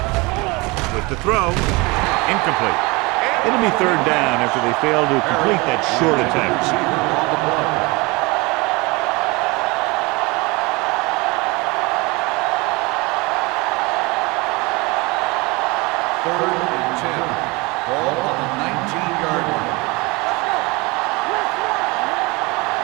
With the throw, incomplete. It'll be third down after they fail to complete that short attempt. Third and 10. Ball on the 19-yard line.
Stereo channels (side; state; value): left; quieter; 25.2 dB